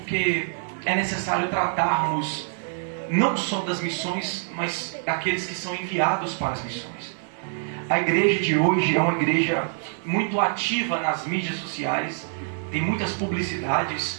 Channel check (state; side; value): silent; left; digital silence